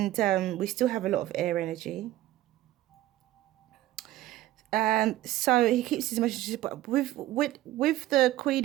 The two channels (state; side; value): quieter; left; 15.1 dB